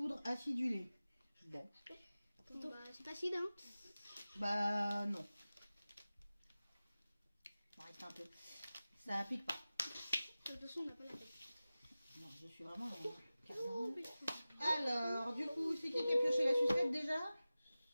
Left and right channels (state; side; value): inverted; both; correlation -0.96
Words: acidulée. Bon. Bon, bah, c'est facile, hein. Bah, non. On va arrêter un peu. Ça pique pas. De toute façon, on n'a pas la tête. Non, je suis vraiment dans le carnage. Alors, du coup, c'est qui a pioché la sucette déjà?